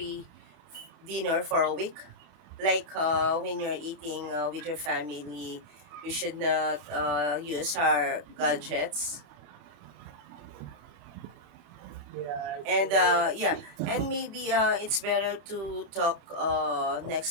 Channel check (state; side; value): late; left; 30 ms